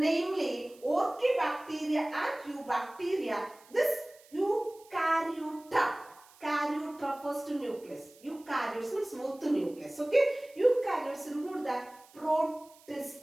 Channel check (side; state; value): right; noise; hiss, 26 dB below the sound